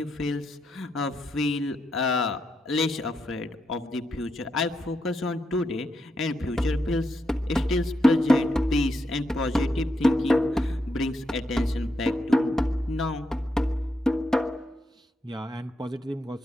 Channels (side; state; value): both; normal; correlation 0.82